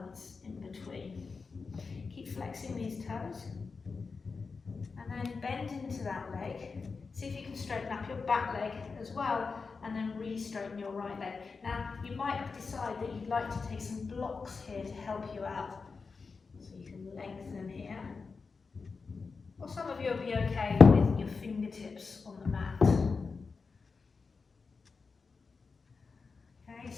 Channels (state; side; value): quieter; right; 4.7 dB